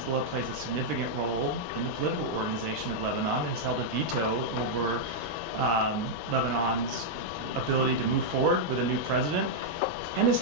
plays a significant role in the political organization of Lebanon and has held a veto over Lebanon's ability to move forward with a new president, and has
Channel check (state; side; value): normal; both; correlation -0.04